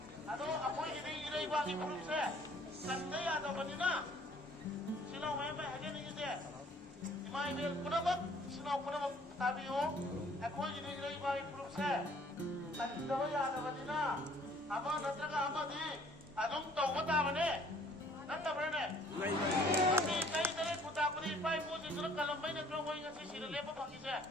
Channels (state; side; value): normal; both; correlation 0.58